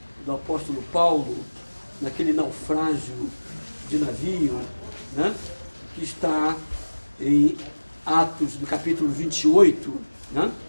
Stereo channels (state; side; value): inverted; both; correlation -1.00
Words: do apóstolo Paulo, naquele naufrágio de navio, né, que está em Atos do capítulo 28, né?